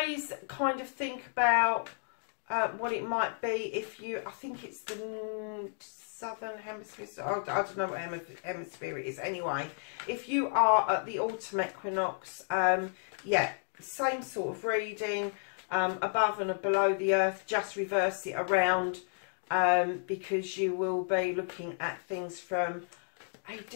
kind of think about what it might be if you, I think it's the southern hemisphere, I don't know what hemisphere it is. Anyway, if you are at the autumn equinox, yeah, same sort of reading, above and below the earth, just reverse it around, because you will be looking at things from a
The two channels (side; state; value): right; silent; digital silence